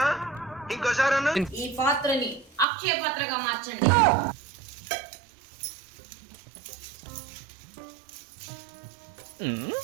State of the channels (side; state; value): left; drops out; at 2.7 s